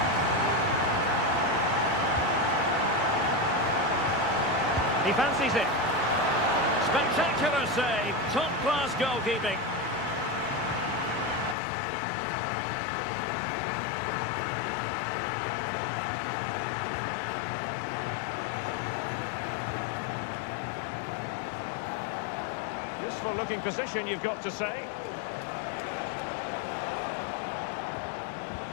He fancies it. Spectacular save, top-class goalkeeping. Useful looking position, you've got to say.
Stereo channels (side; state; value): right; drops out; at 11.6 s